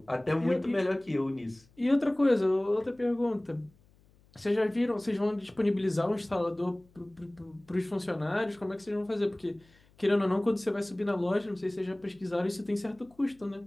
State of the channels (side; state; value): left; noise; hum, 30 dB below the sound